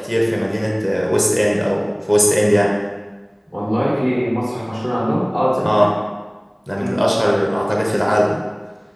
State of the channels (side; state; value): both; identical; correlation 1.00